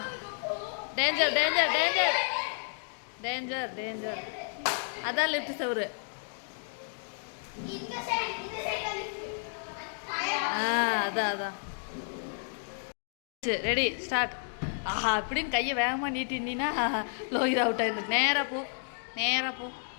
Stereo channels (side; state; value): right; silent; digital silence